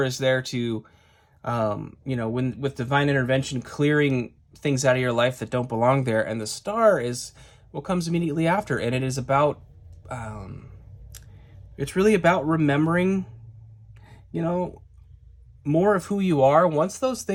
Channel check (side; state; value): both; identical; correlation 1.00